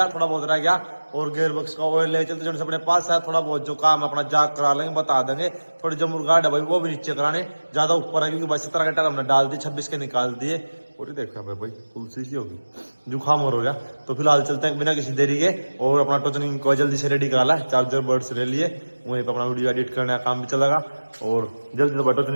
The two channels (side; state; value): both; inverted; correlation -1.00